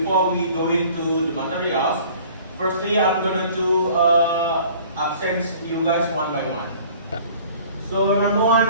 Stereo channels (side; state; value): both; inverted; correlation -0.50